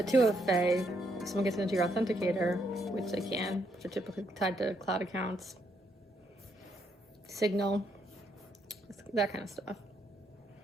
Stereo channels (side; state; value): both; normal; correlation 0.75